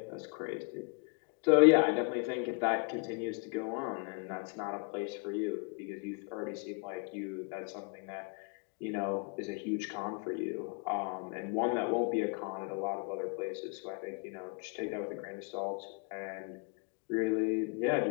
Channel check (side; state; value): right; quieter; 35.5 dB